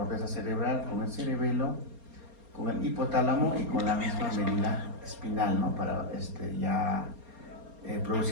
cerebral, con el cerebelo, con el hipotálamo y con la misma médula espinal, ¿no? Para ya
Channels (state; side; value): late; left; 4.3 ms